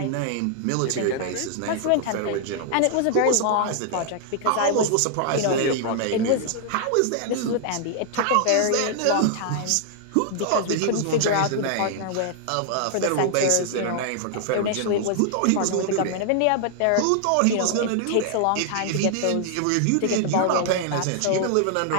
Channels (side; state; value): both; different; correlation 0.00